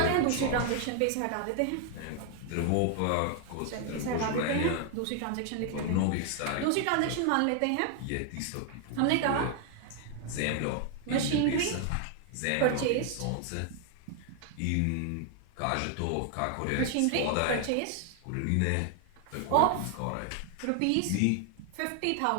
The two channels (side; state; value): both; different; correlation 0.00